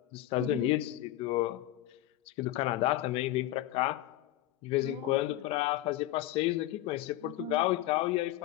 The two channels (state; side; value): quieter; right; 14.6 dB